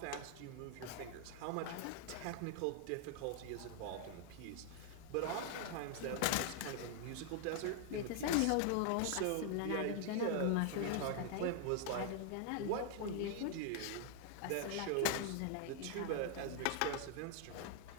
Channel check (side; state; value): both; different; correlation 0.00